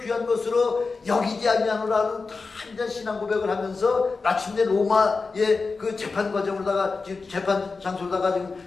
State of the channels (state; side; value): quieter; right; 4.2 dB